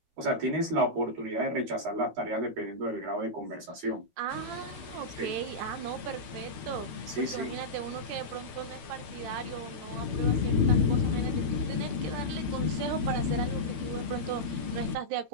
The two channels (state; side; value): late; left; 13 ms